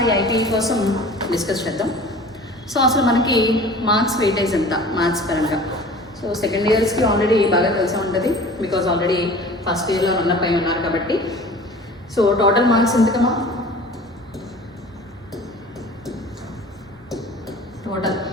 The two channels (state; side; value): normal; both; correlation 0.43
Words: ఐపీ కోసం డిస్కస్ చేద్దాం. సో అసలు మనకి మార్క్స్ వెయిటేజ్ ఎంత మ్యాథ్స్ పరంగా. సో సెకండ్ ఇయర్స్కి ఆల్రెడీ బాగా తెలిసే ఉంటుంది, బికాజ్ ఆల్రెడీ ఫస్ట్ ఇయర్లో రన్నప్ అయి ఉన్నారు కాబట్టి. సో టోటల్ మార్క్స్ ఎంతకమ్మా? Total